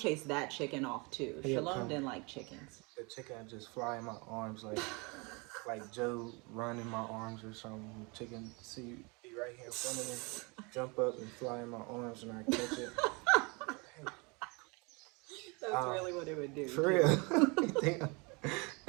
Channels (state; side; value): quieter; left; 29.5 dB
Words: that chicken off, too. he'd Shalom come. didn't like chickens. The chicken would just fly in my arms like Joe run in my arms or something. Chicken see be right here in front of me, jump up and fly in my arms, and I catch it. Hey, That's really what it would do, for too. real.